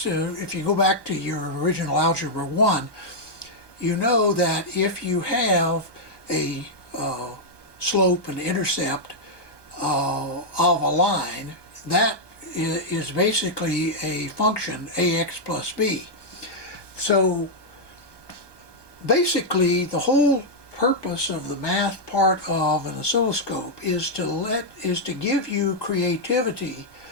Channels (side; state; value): right; late; 1.2 ms